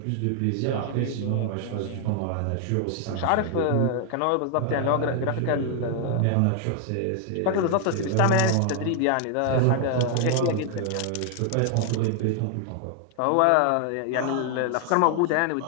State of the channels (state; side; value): different; both; correlation 0.00